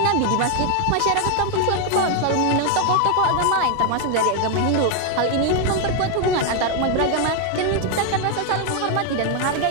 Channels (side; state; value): both; different; correlation 0.01